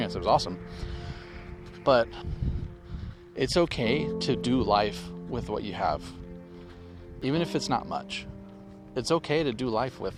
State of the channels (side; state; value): both; identical; correlation 1.00